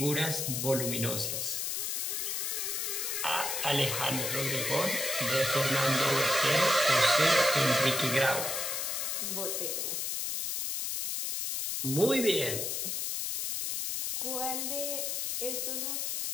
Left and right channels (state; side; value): noise; left; hiss, 1 dB below the sound